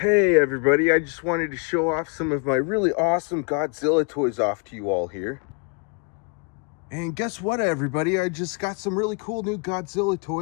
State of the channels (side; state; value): right; quieter; 36.1 dB